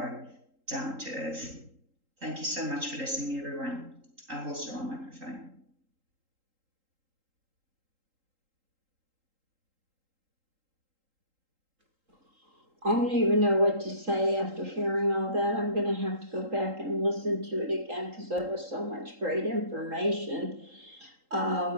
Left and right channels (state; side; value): late; left; 3.8 ms